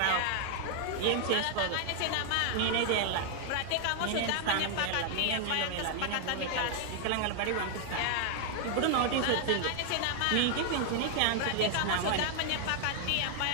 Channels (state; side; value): different; both; correlation 0.00